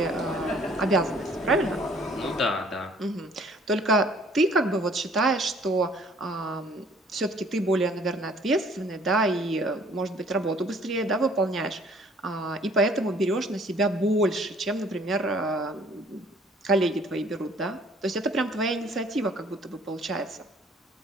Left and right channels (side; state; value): both; normal; correlation 0.57